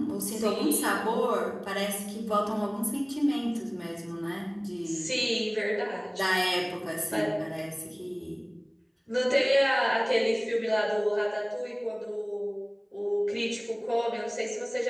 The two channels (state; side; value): identical; both; correlation 1.00